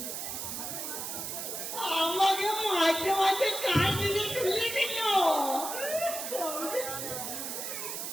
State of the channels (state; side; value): noise; right; hiss, 5 dB below the sound